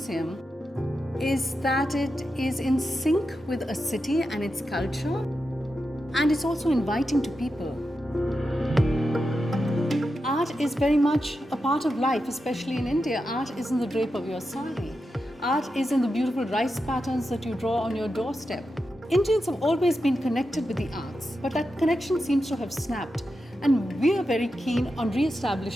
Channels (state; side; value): normal; both; correlation 0.89